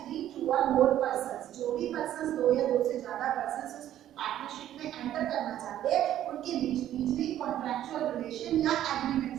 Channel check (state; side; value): quieter; left; 12.0 dB